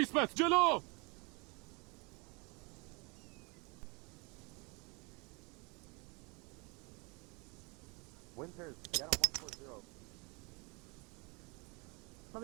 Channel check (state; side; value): quieter; left; 29.0 dB